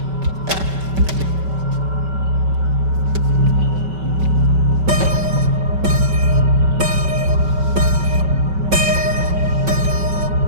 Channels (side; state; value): left; late; 5.2 ms